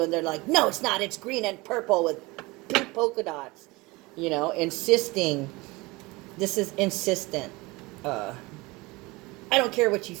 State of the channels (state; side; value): quieter; left; 23.2 dB